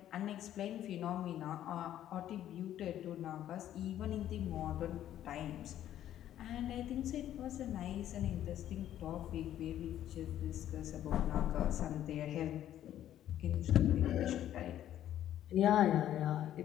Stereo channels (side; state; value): right; quieter; 11.7 dB